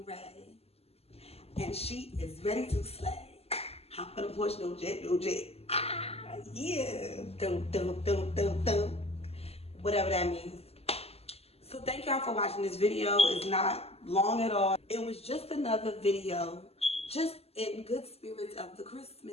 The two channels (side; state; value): right; late; 0.29 ms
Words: Raeee, and she is ready to slay. Hop on the porch, no jet, no jet. Ah, yeah, dum, dum, dum, dum, dum. Whatever that means. So thank y'all for watching this video. It's not long at all. It was just another video, just in good spirits of the